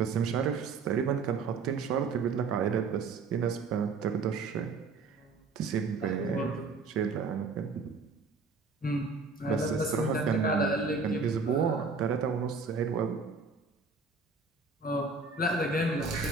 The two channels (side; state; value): left; quieter; 4.4 dB